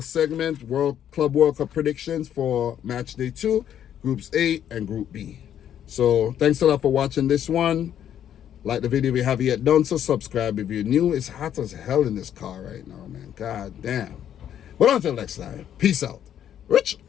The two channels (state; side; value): quieter; right; 10.1 dB